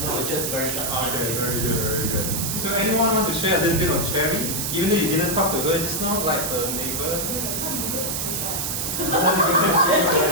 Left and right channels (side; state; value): right; noise; hiss, 1 dB below the sound